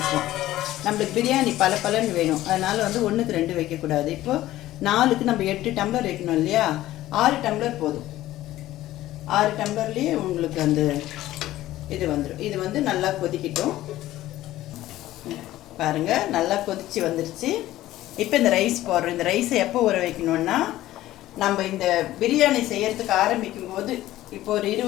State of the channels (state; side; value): quieter; right; 15.1 dB